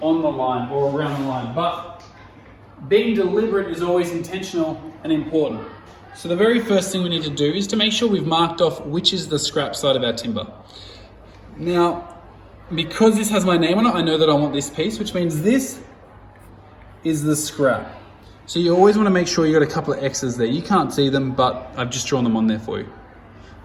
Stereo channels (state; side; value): identical; both; correlation 1.00